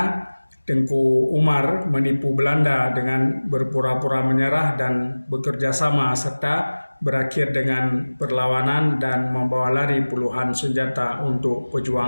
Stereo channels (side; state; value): both; inverted; correlation -1.00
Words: Tengku Umar menipu Belanda dengan berpura-pura menyerah dan bekerja sama, serta berakhir dengan perlawanan dan membawa lari puluhan senjata untuk